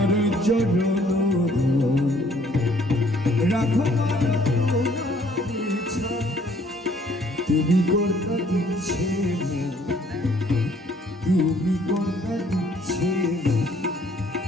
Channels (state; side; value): normal; both; correlation 0.61